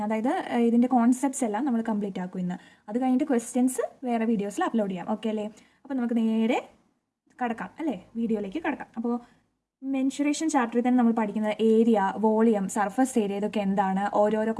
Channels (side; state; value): both; identical; correlation 1.00